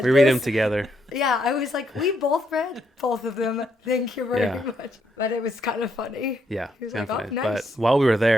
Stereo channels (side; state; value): both; normal; correlation 0.76